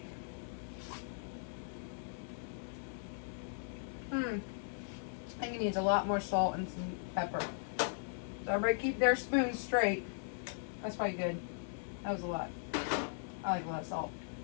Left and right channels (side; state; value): right; silent; digital silence